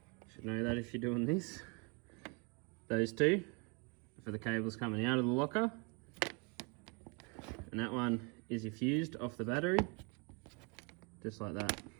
Should know that if you're doing this. Those two for the cables coming out of the locker. And that one is your fused off the battery. Just like that.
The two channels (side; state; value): left; quieter; 32.9 dB